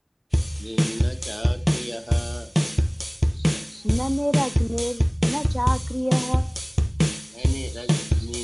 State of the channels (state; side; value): identical; both; correlation 1.00